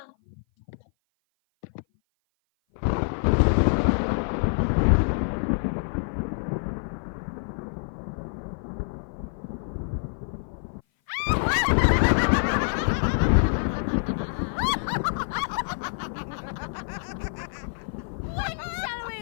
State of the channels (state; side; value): silent; right; 56 dB below the other